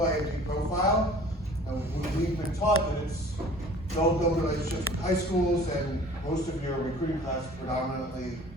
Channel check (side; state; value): both; normal; correlation 0.48